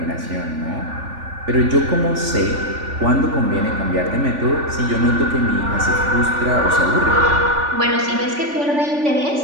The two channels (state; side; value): late; left; 3.5 ms